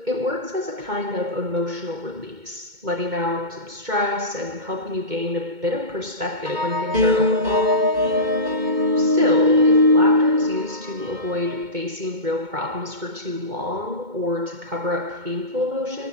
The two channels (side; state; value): left; late; 2.2 ms